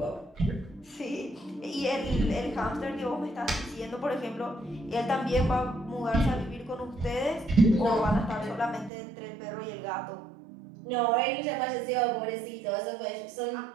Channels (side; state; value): left; drops out; at 8.9 s